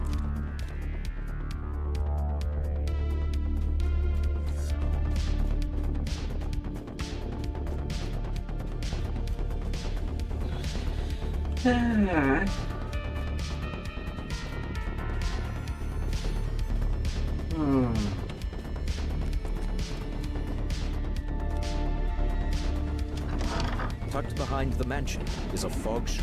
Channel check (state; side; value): identical; both; correlation 1.00